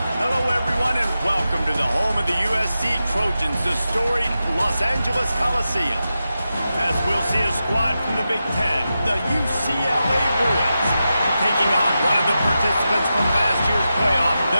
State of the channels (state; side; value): inverted; both; correlation -0.90